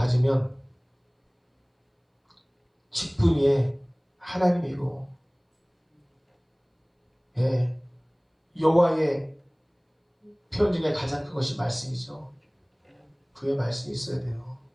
직분 위에 하나님이고 여호와의 표현 중에 가장 큰 것이 말씀이죠. 주의 말씀이 있어야 돼요.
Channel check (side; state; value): both; identical; correlation 1.00